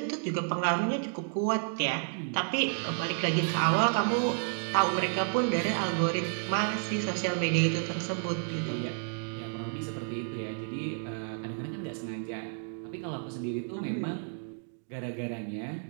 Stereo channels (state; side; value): silent; left; 57 dB below the other